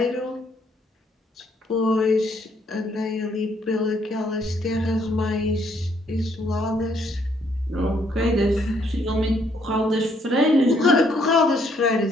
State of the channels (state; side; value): normal; both; correlation 0.69